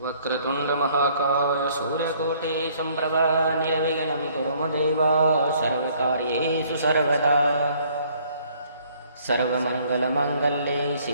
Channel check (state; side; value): inverted; both; correlation -0.61